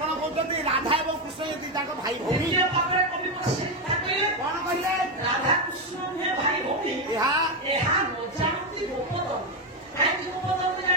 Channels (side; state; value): both; normal; correlation 0.08